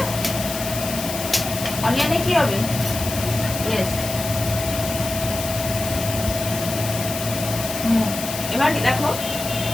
অনিয়নে কি হবে? ইয়েস। এবার দেখো,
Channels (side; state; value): left; noise; hiss, 7 dB below the sound